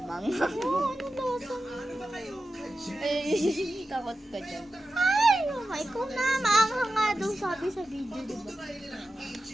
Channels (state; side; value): normal; both; correlation 0.93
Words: Oh, ano lasa nito? Ay, takot ka dyan. Ay, ikaw na. Maanghang nga daw sabi sa video, diba?